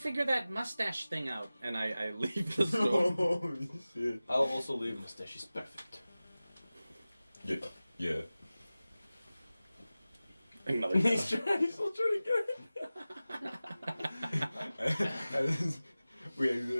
that mustache thing out," and I leave the store. Holy shit. I'll also leave. Your mustache is perfect. Yeah. Yeah. Another He's still trying to get We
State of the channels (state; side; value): inverted; both; correlation -0.97